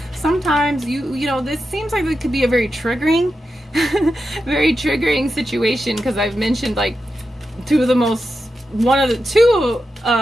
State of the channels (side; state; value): both; normal; correlation 0.89